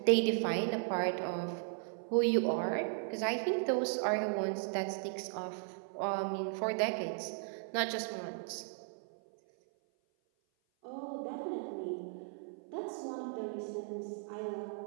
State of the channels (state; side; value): silent; left; 53 dB below the other